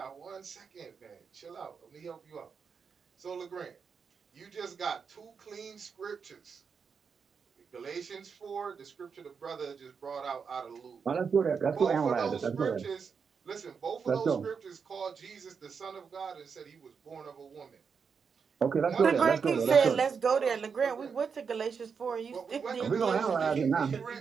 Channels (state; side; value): quieter; left; 6.0 dB